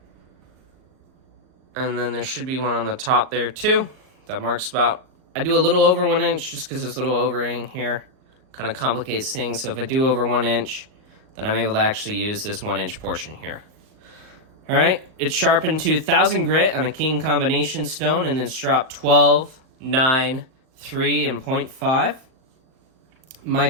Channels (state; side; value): late; left; 38 ms